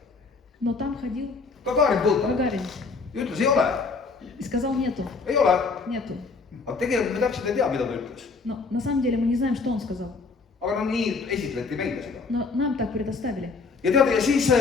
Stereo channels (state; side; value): quieter; right; 4.4 dB